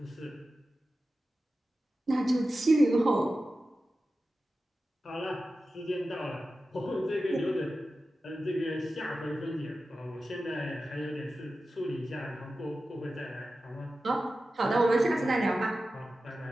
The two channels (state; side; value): normal; both; correlation 0.93